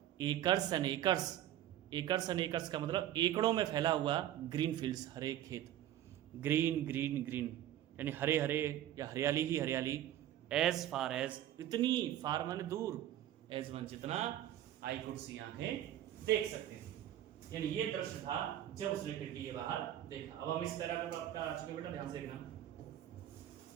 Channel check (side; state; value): left; quieter; 12.3 dB